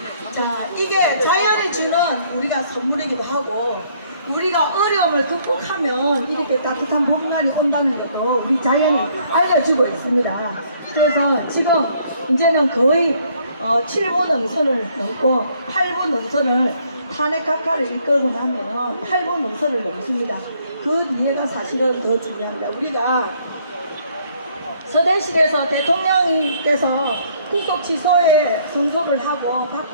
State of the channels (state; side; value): inverted; both; correlation -0.65